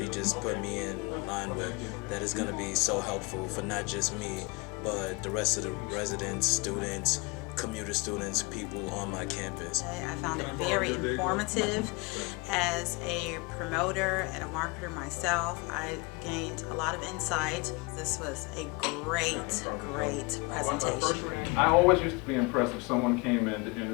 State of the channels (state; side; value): quieter; right; 27.7 dB